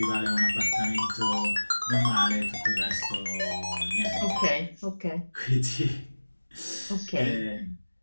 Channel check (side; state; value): both; inverted; correlation -1.00